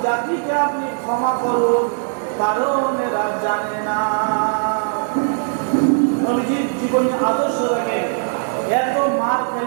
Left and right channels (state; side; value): silent; left; digital silence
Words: জাতিকে আপনি ক্ষমা করুন, কারণ এরা জানে না। নবীজির জীবনী আদর্শ রাখে, এত মার